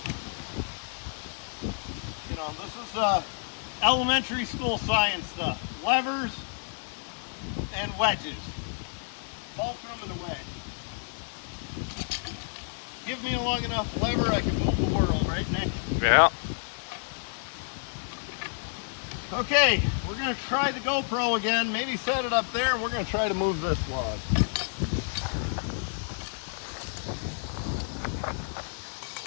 You know, this is elementary school science stuff. Levers and wedges. Fulcrum and a wedge. Give me a long enough lever, I can move the world, right, Nick? Yeah. Okay, we're gonna try the GoPro again. Maybe set it up there and we're gonna try to move this log.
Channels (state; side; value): silent; right; digital silence